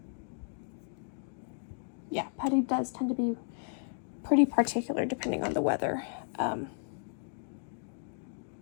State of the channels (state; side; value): silent; right; digital silence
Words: Yeah, putty does tend to be pretty particular depending on the weather.